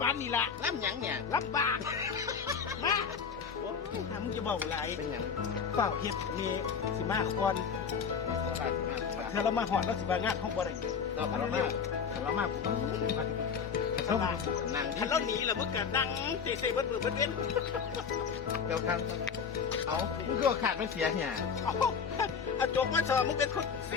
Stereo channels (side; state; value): right; quieter; 6.4 dB